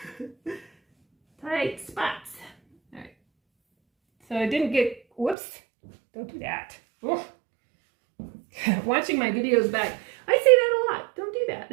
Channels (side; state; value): left; drops out; at 5.4 s